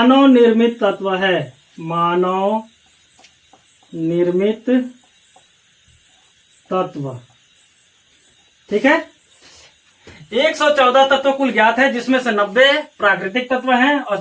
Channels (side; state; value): both; identical; correlation 1.00